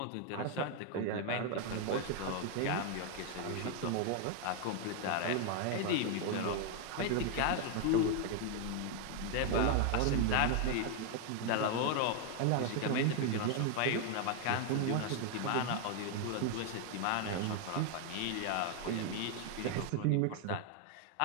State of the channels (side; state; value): both; different; correlation 0.00